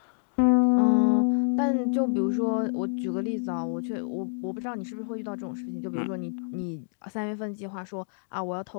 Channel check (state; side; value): silent; right; digital silence